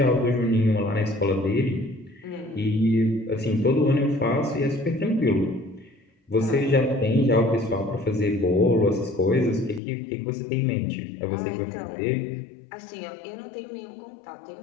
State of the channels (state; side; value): drops out; right; at 9.8 s